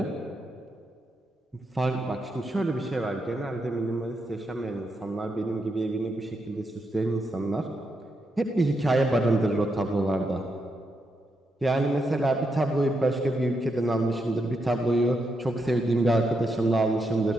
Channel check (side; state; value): both; normal; correlation 0.82